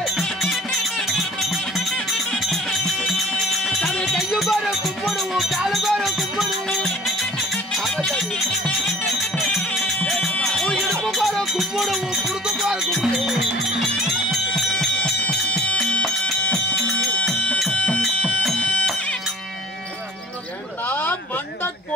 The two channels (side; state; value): both; normal; correlation 0.48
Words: சாமி கையு கோர கும்பிடுவோம், காலு கோர கும்பிடுவோம், இடுப்பு கோர கும்பிடுவோம், குடுக்கு கோர கும்பிடுவோம். மண்ட